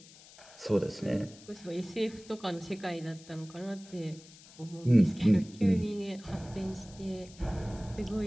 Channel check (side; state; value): left; noise; hiss, 21 dB below the sound